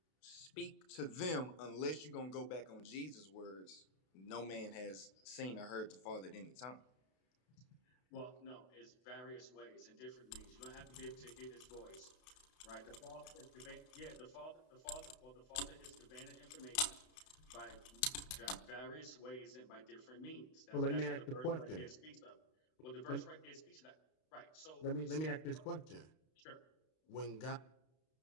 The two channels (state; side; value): late; right; 32 ms